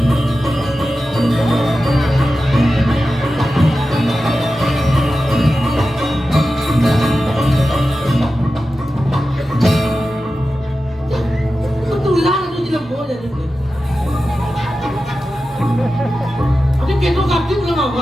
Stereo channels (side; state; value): both; normal; correlation 0.92